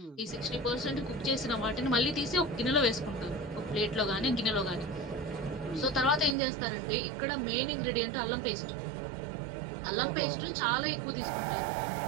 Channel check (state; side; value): drops out; left; at 6.4 s